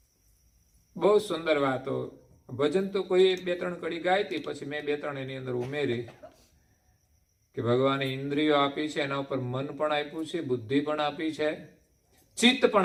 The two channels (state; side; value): identical; both; correlation 1.00